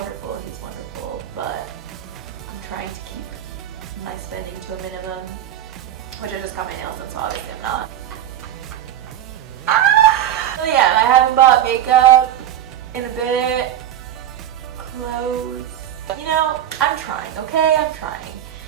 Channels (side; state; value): left; quieter; 11.2 dB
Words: He's wonderful, but I'm trying to keep my spending to a minimum, which I just got my nails done, so obviously I'm not. So yeah, and I haven't bought makeup in a bit, clothes. You know, I'm trying, okay? I'm trying.